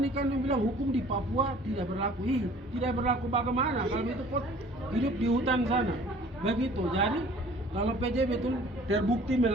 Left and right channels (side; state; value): both; normal; correlation 0.51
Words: kan dia bilang hukum di Papua tidak berlaku. Tidak berlaku bagaimana kalau itu kok hidup di hutan sana. Begitu. Jadi kalau PJ betul terbukti